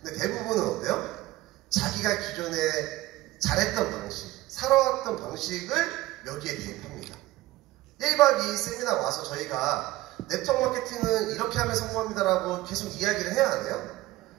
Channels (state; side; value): quieter; left; 17.5 dB